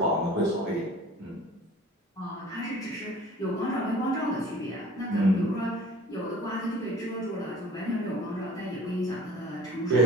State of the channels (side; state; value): both; normal; correlation 0.47